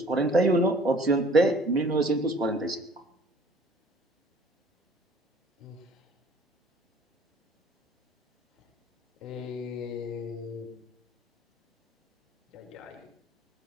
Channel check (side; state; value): both; normal; correlation 0.53